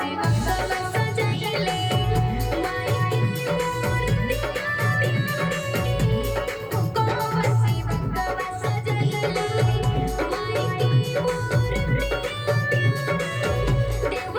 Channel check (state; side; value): identical; both; correlation 1.00